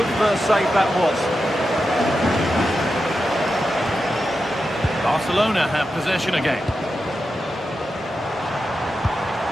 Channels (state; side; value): normal; both; correlation 0.89